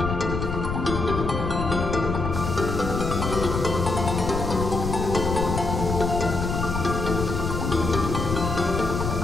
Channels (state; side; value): noise; left; rumble, 3 dB below the sound